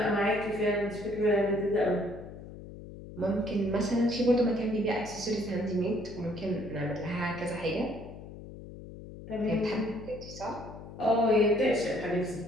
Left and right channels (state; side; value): noise; left; hum, 14 dB below the sound